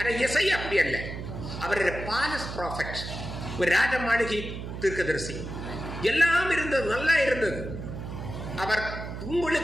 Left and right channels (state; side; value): noise; right; hum, 8 dB below the sound